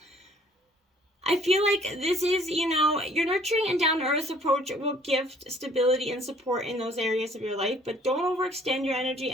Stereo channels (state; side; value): normal; both; correlation 0.59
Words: I feel like this is, your nurturing and down-to-earth approach will give stability and support in those areas of your life, but don't overextend your energy